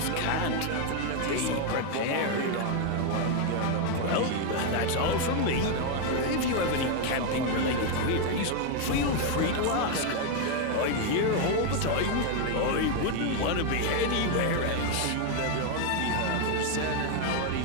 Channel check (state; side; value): different; both; correlation 0.01